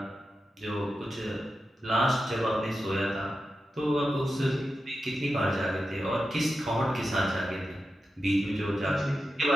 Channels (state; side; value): normal; both; correlation 0.91